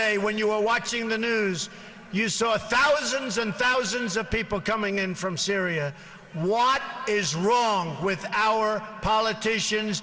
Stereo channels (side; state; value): both; identical; correlation 1.00